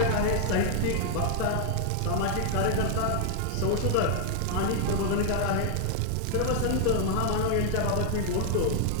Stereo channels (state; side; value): different; both; correlation 0.00